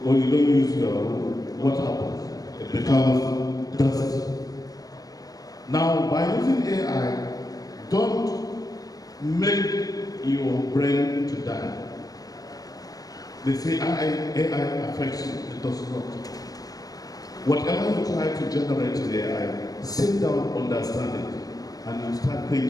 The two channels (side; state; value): right; late; 0.18 ms